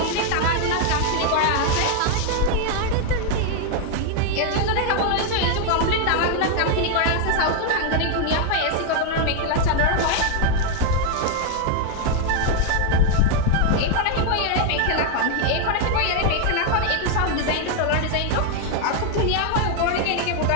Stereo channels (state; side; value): different; both; correlation 0.01